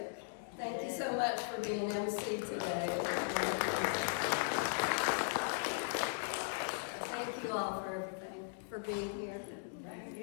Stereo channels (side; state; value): right; silent; digital silence